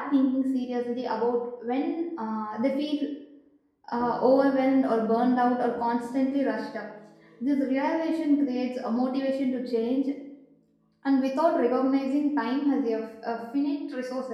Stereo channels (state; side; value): identical; both; correlation 1.00